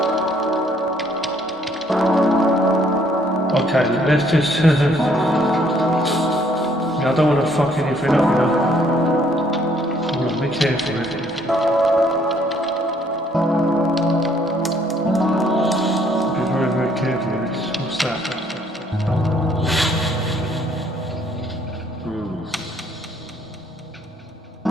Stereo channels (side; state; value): both; normal; correlation 0.64